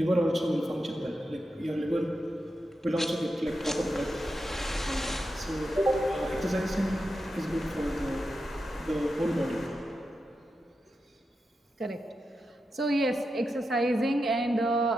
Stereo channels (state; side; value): normal; both; correlation 0.88